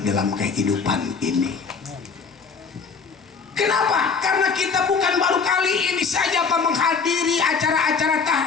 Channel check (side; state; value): right; quieter; 5.3 dB